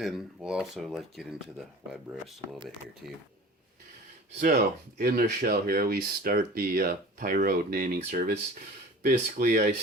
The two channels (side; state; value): both; normal; correlation 0.41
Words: we'll also get into the web roast a little bit here too. So in the shell here, we start the Pyro naming service. Basically, I